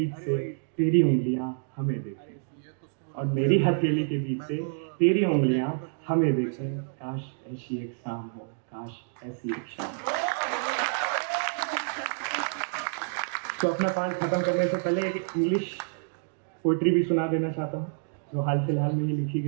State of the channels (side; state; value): left; silent; digital silence